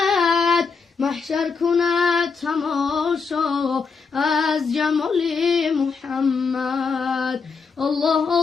محشر کند تماشا از جمال محمد. الله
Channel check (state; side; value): quieter; right; 5.1 dB